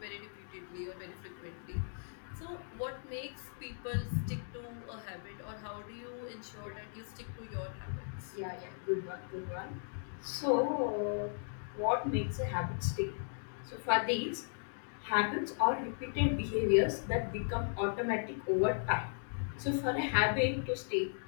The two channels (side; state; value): right; silent; digital silence